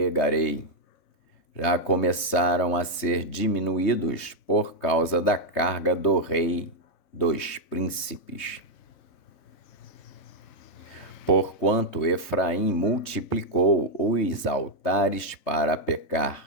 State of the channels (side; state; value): right; late; 3.2 ms